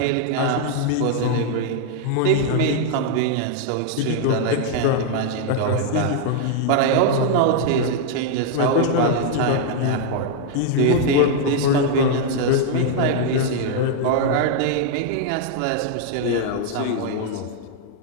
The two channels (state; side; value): different; both; correlation 0.00